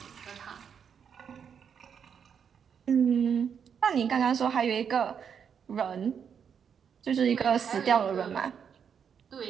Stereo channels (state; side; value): quieter; left; 7.4 dB